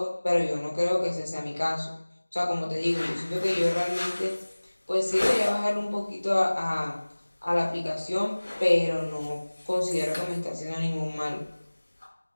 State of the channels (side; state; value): both; inverted; correlation -1.00